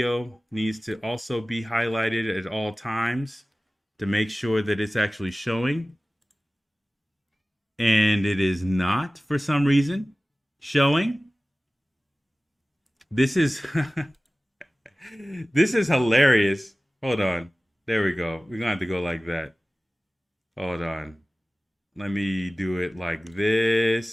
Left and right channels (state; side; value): normal; both; correlation 0.97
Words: needs to also be highlighted at all times to make sure that it's actually showing. And it is not, for some reason, showing. This is this is hilarious. Hold on. There we go. We're going to have to go like that. Hold on. Let me do it like